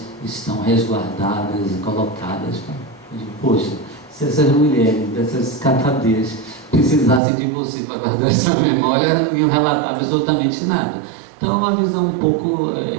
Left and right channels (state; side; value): drops out; left; at 7.2 s